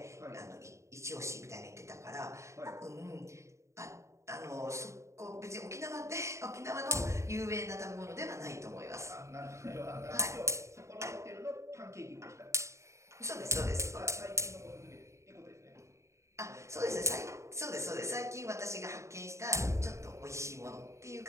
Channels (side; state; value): left; late; 0.14 ms